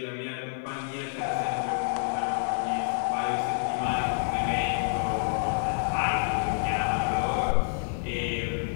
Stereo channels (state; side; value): silent; right; digital silence